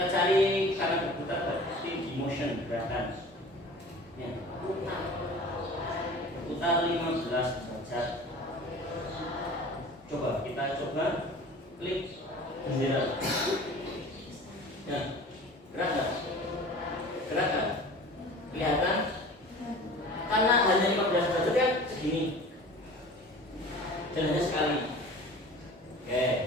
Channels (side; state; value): both; normal; correlation 0.41